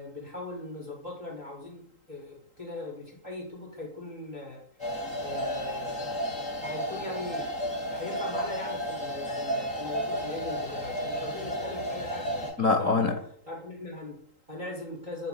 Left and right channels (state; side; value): late; left; 3.8 ms